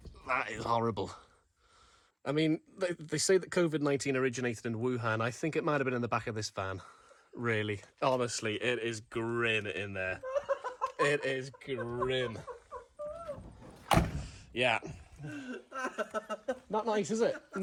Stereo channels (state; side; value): identical; both; correlation 1.00